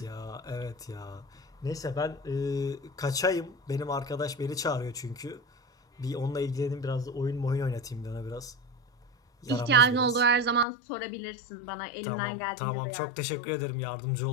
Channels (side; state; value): right; drops out; at 10.7 s